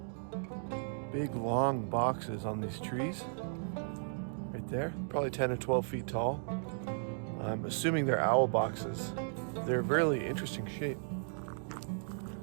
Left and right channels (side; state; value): left; silent; digital silence